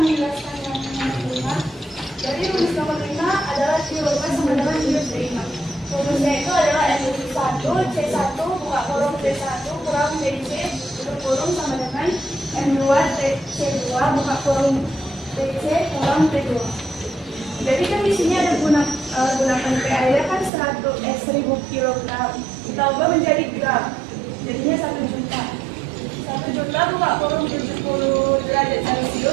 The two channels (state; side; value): drops out; left; at 20.5 s